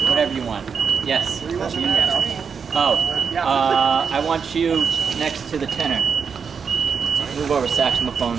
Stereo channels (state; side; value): quieter; left; 6.2 dB